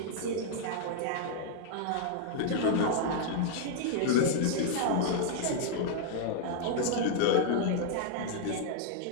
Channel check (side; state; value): both; different; correlation -0.01